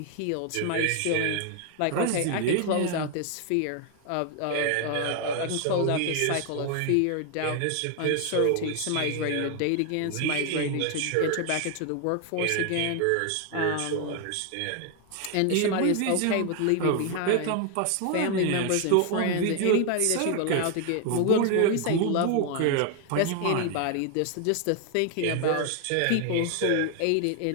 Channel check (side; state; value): both; different; correlation 0.00